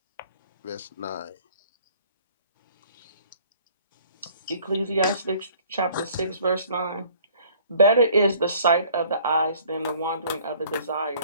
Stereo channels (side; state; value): both; inverted; correlation -0.55